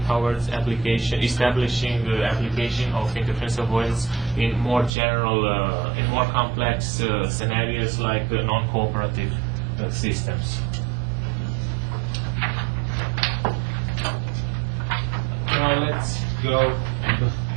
towards establishing the application of interference avoidance in more general, in more complex scenarios like non-cooperative systems. Now let's go into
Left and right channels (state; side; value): drops out; left; at 4.9 s